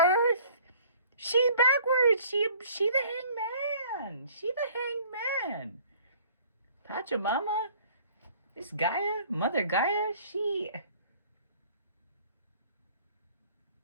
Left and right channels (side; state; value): both; inverted; correlation -0.54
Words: She backwards. She the hangman. She the hangman. Pachamama. This Gaia, Mother Gaia,